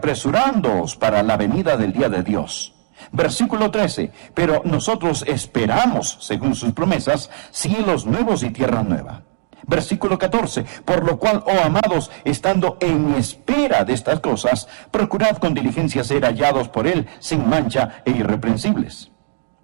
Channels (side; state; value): left; silent; digital silence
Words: para la venida del día de Dios. Versículo 13. Pero nosotros esperamos, según sus promesas, cielos nuevos y tierra nueva. Versículo 14, por lo cual, oh amados, estando en espera de estas cosas, procurad con diligencia ser hallados por Él, sin mancha e irreprensibles.